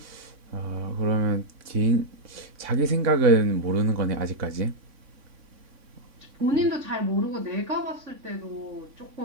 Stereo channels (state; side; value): late; left; 3.6 ms